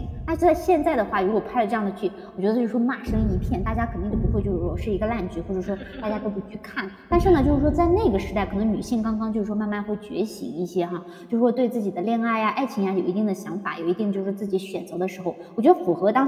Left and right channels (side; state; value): both; identical; correlation 1.00